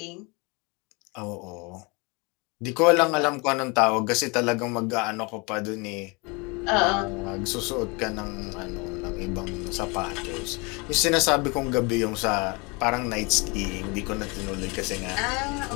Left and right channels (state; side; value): quieter; right; 28.9 dB